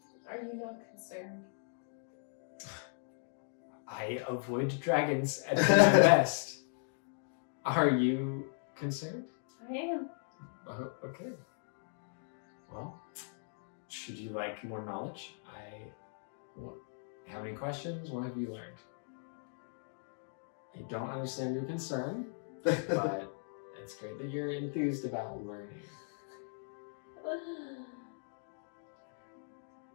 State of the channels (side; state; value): right; silent; digital silence